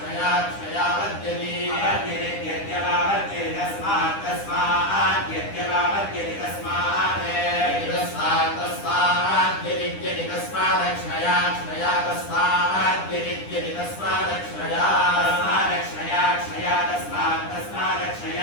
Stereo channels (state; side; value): late; right; 9.9 ms